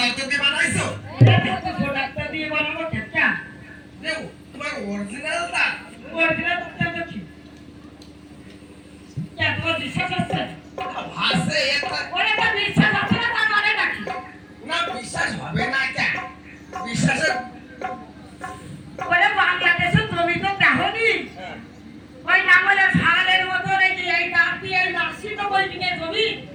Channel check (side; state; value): both; identical; correlation 1.00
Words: দিয়ে বানাইছো? ডাক্তার দিয়ে বানাবো কেটা দেও তোমার অরিজিনাল দাঁত? অরিজিনাল ডাক্তার কি কেন বিশ্বাস আছে ভাসে এটা ওরে তো বিশ্বাস আছে না তার মানে নাকি না বিশ্বাস হবে না কেন? বিশ্বাসের ওরে বাংলাদেশে তুমি তো দেখোনি ওই নাঙ্গলের ছাগলের মতো নাকি এই দাঁত দিয়ে এই নার্সি তো বলবি না জমি